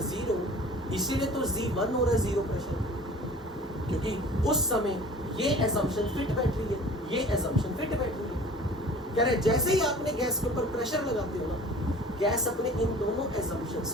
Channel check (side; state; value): both; normal; correlation 0.45